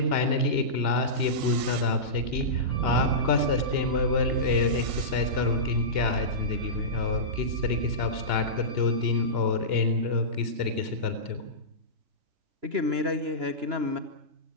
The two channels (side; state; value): left; late; 2.8 ms